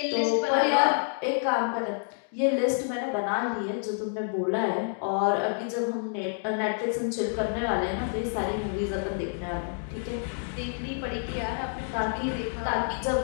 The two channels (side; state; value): right; silent; digital silence